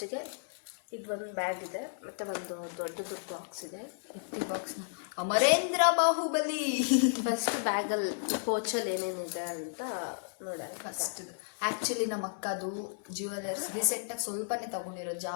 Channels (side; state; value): right; silent; 56 dB below the other